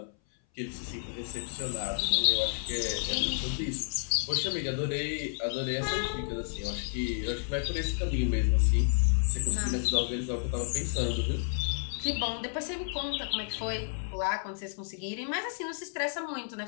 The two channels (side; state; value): right; silent; 57 dB below the other